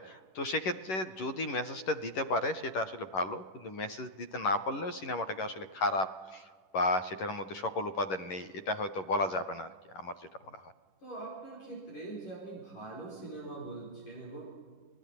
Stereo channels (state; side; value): late; right; 11 ms